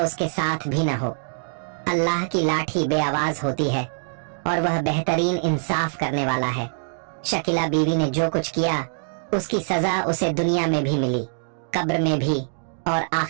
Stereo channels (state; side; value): silent; left; digital silence